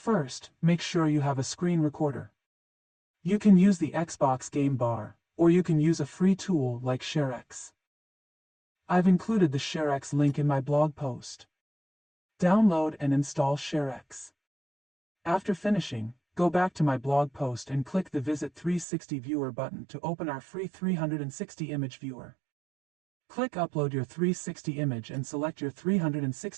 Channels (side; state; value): left; drops out; at 18.9 s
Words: make sure you have a screen recorder. You can use the Xbox game bar, or you can use a free tool like ShareX. I've included the ShareX link in my blog post. Download and install ShareX. After finishing, go back to my blog post and click the Visit 360 Viewer button to open our free 360 image viewer. Click Upload your 360 image and select your